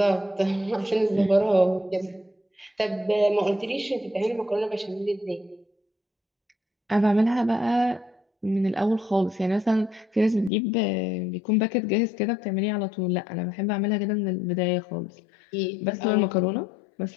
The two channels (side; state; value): right; drops out; at 10.5 s